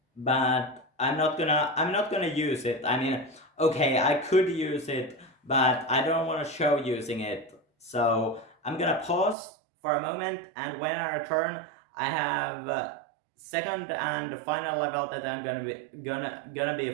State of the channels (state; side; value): drops out; left; at 9.3 s